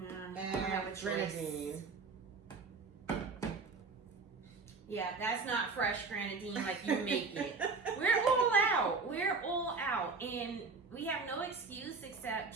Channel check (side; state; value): left; quieter; 4.4 dB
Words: I have a and choice. grenadine. Yeah, that's not fresh grenadine like you make it. We're all out. We're all out. And we have no excuse except